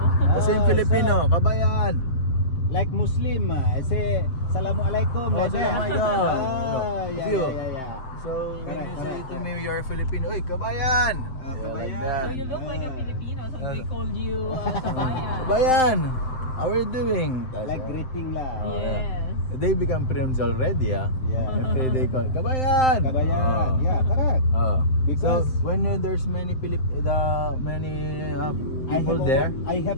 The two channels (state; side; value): late; right; 7.7 ms